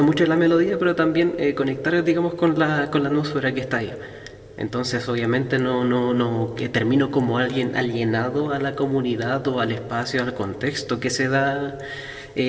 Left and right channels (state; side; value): identical; both; correlation 1.00